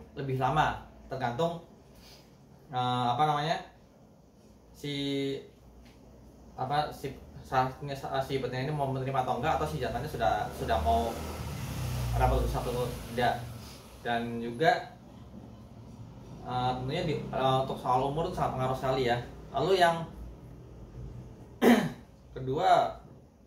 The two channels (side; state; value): both; identical; correlation 1.00